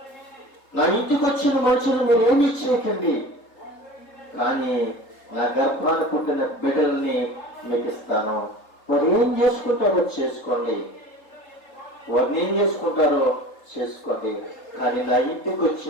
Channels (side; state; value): right; late; 3.8 ms